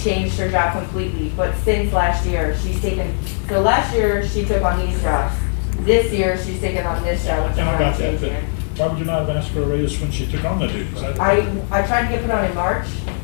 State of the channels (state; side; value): silent; right; digital silence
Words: her job completely, but since last year, so last year, she took on these jobs. This year, she's taken on this job, which is And I why I'm got that, changing but it. why would you not have asked for a raise when she took on the duties? I tried to get put on in March,